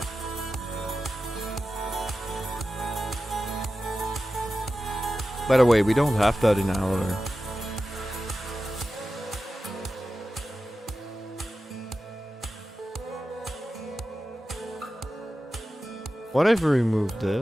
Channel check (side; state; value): both; normal; correlation 0.93